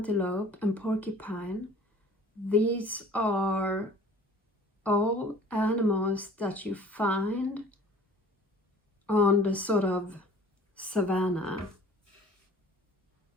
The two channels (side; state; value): both; normal; correlation 0.48